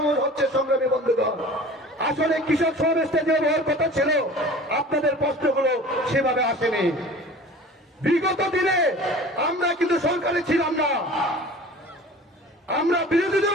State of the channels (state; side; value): normal; both; correlation 0.41